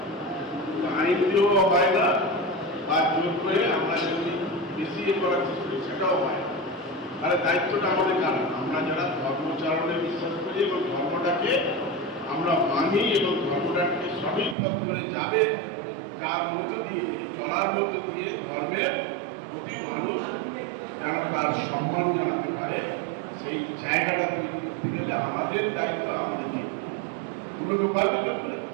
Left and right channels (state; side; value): drops out; left; at 14.6 s